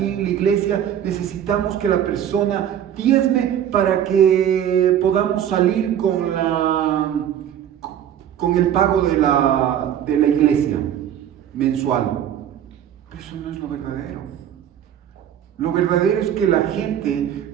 en la iglesia necesitamos que la persona diezme para que podamos salir con el pago de la iglesia mensual. Pero eso no es lo verdadero. Lo verdadero es que la gente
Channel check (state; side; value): quieter; left; 10.0 dB